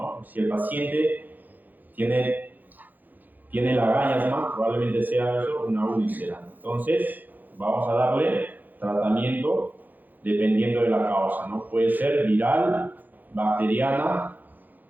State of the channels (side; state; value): left; late; 0.085 ms